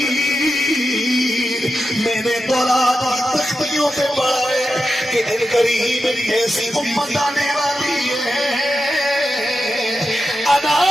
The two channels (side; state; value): both; normal; correlation 0.89